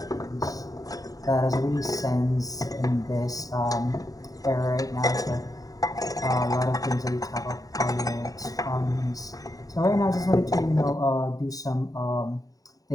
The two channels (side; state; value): right; late; 0.18 ms